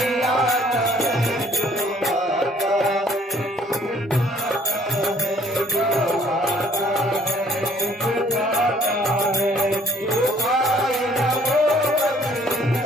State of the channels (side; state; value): both; normal; correlation 0.60